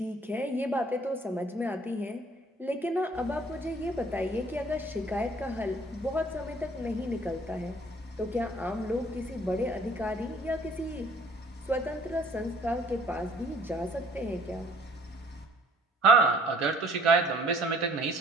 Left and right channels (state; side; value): normal; both; correlation 0.56